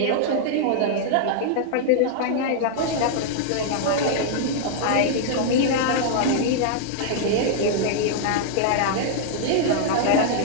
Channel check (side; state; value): both; different; correlation -0.01